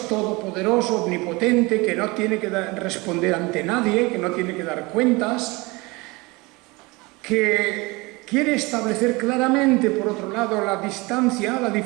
todopoderoso, omnipotente, que no tiene que responder ante nadie, que no tiene que dar cuentas, que quiere establecer claramente, por otro lado, la distancia, la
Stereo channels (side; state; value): left; quieter; 24.5 dB